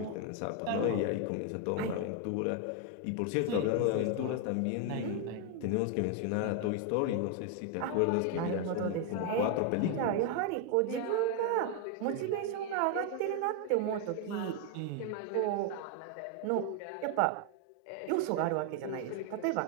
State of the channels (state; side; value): different; both; correlation 0.01